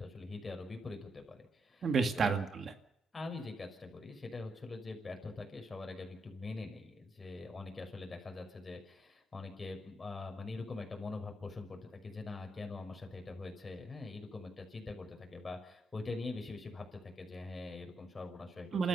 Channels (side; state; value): both; normal; correlation 0.80